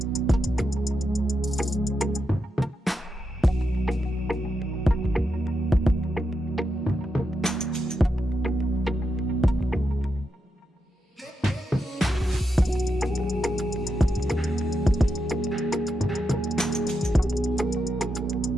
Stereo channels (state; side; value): normal; both; correlation 0.85